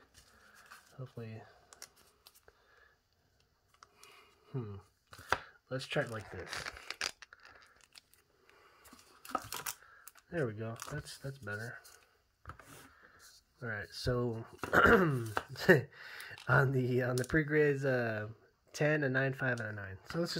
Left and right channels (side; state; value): both; identical; correlation 1.00